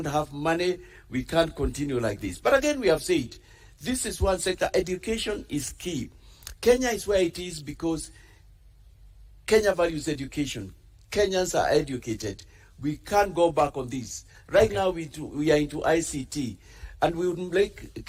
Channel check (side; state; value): both; identical; correlation 1.00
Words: have money. We can't continue like this. But again, we have said, this is one sector. Education is key. Kenya is where it is because Kenya values education. Kenyans are educated. We can't go back on this. Right now, we are into ICT, and we would like